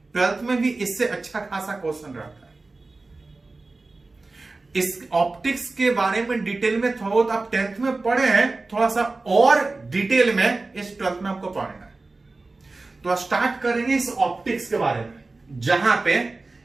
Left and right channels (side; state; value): left; quieter; 3.4 dB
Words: 12th में भी इससे अच्छा खासा क्वेश्चन रहता है। इस ऑप्टिक्स के बारे में डिटेल में थोड़ा बहुत आप 10th में पढ़े हैं, थोड़ा सा और डिटेल में इस 12th में आपको पढ़ना है। तो स्टार्ट करेंगे इस ऑप्टिक्स के बारे में, जहां पे